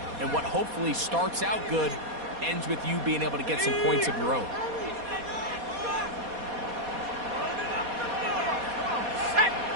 and what hopefully starts out good ends with you being able to get some points of your own.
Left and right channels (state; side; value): late; left; 4.2 ms